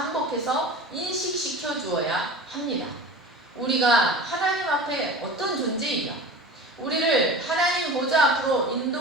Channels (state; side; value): normal; both; correlation 0.35